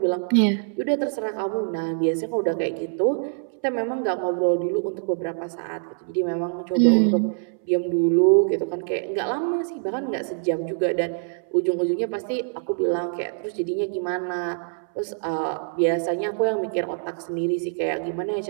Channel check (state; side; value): silent; left; 62 dB below the other